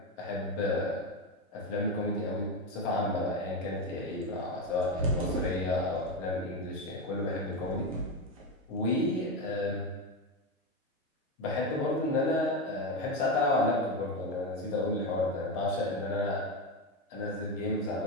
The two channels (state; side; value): normal; both; correlation 0.13